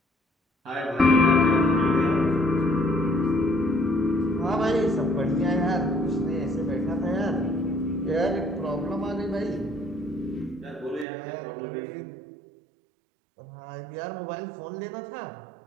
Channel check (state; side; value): drops out; left; at 11.1 s